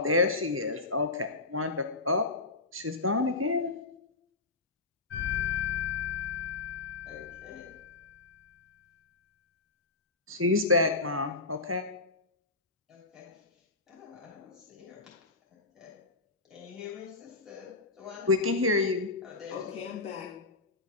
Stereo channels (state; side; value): quieter; right; 3.5 dB